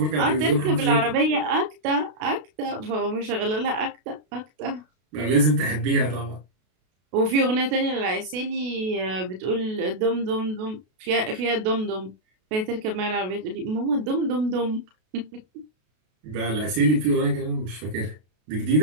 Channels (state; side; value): late; left; 32 ms